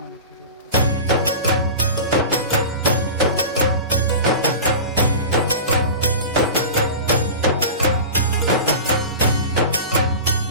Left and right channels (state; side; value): inverted; both; correlation -0.32